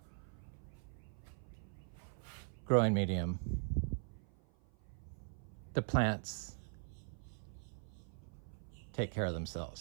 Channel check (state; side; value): silent; left; 50 dB below the other